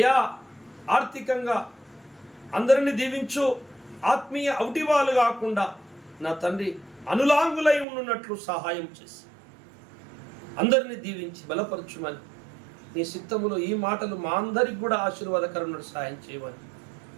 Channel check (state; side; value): drops out; left; at 7.9 s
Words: ఆర్థికంగా అందరినీ దీవించు. ఆత్మీయ ఔటివాలు కాకుండా నా తండ్రి అనులాంగులై ఉన్నట్లు సహాయం చేసి అందరినీ దీవించి బలపరచుమని నీ చిత్తములో ఈ మాటలు మా అందరికి కూడా ఆశీర్వాదకరమైన సహాయం చేయమని